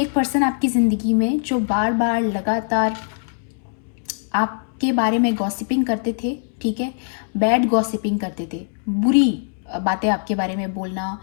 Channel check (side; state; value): right; silent; 64 dB below the other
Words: एक पर्सन आपकी ज़िंदगी में जो बार बार लगातार आपके बारे में गॉसिपिंग करते थे, ठीक है, बैड गॉसिपिंग करते थे, बुरी बातें आपके बारे में बोलना